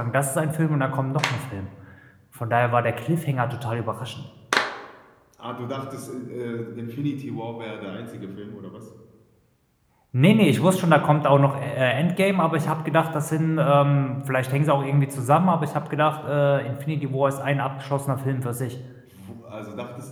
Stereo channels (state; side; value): identical; both; correlation 1.00